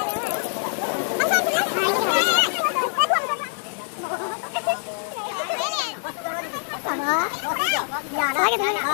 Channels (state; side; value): silent; right; digital silence